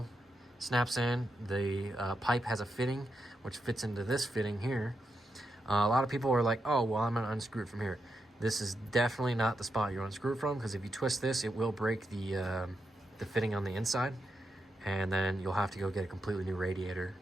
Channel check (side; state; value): both; normal; correlation 0.85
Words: snaps in. The pipe has a fitting, which fits into this fitting here. A lot of people are like, oh, well, I'm gonna unscrew it from here. This is definitely not the spot you unscrew it from, because if you twist this, it will break the fitting on the inside, and then you'll have to go get a completely new radiator,